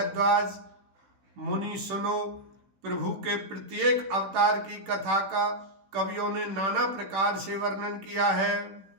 मुनि सुनो, प्रभु के प्रत्येक अवतार की कथा का कवियों ने नाना प्रकार से वर्णन किया है।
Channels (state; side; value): late; left; 15 ms